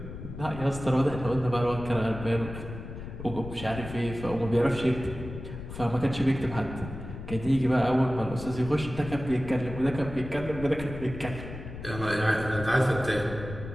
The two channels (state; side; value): noise; left; rumble, 10 dB below the sound